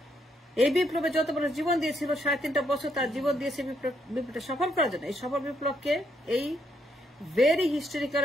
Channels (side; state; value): both; normal; correlation 0.74